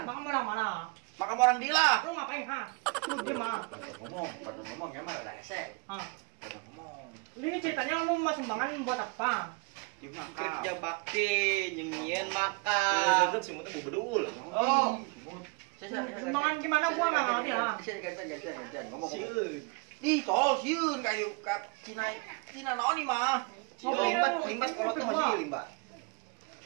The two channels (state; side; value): quieter; left; 30.9 dB